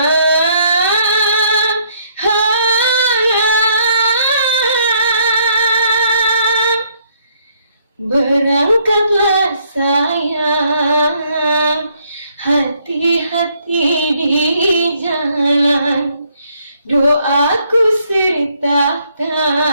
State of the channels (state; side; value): inverted; both; correlation -0.68